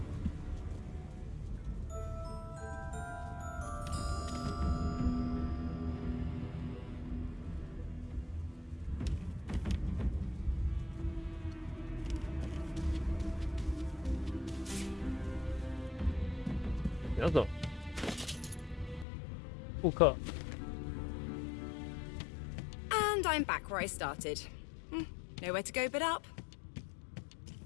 怎么走？复刻。 And I'm back where I started. Nowhere to go but up.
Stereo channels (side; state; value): right; drops out; at 19.1 s